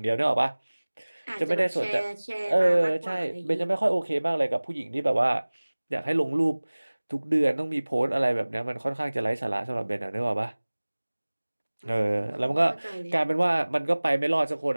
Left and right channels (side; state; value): both; inverted; correlation -1.00